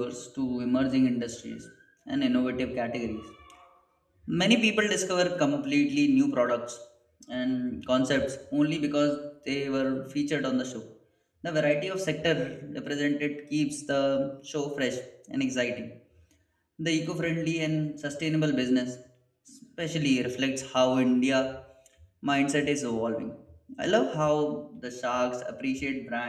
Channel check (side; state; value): both; identical; correlation 1.00